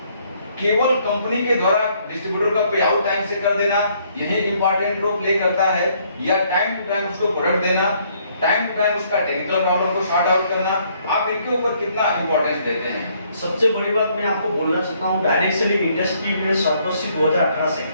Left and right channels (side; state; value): both; inverted; correlation -0.67